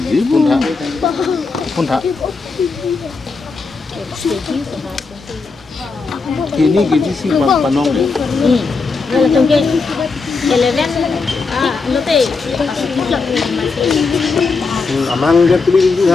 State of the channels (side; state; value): right; quieter; 4.4 dB